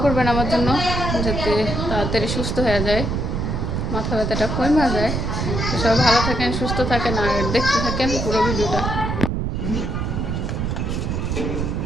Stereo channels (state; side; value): noise; right; rumble, 1 dB below the sound